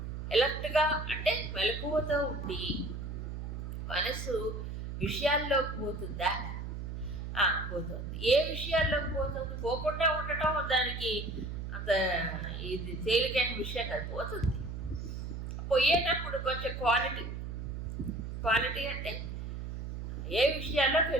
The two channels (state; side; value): noise; right; hum, 6 dB below the sound